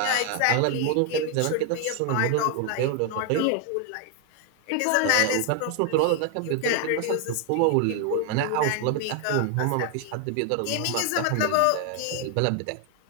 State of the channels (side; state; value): both; different; correlation 0.01